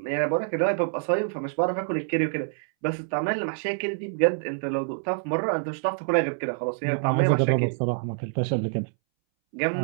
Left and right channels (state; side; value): silent; left; 61 dB below the other